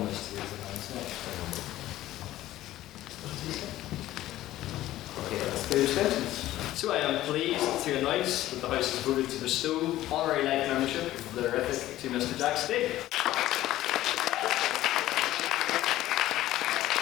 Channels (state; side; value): quieter; right; 14.7 dB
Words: this to raise their hands now? Okay, that's the abstentions. So I am pleased to announce that the House has voted to bestow honorary life membership of the Horrific to Mr. Jack Spade.